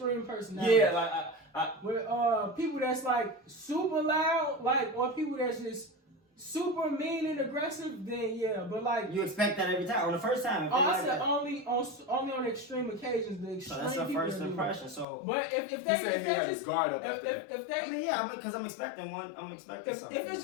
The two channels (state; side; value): drops out; right; at 15.1 s